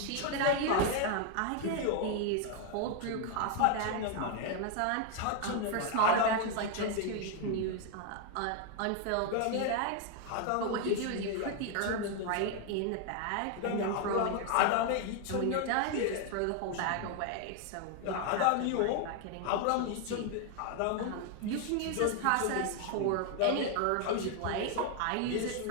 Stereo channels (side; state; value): both; different; correlation 0.00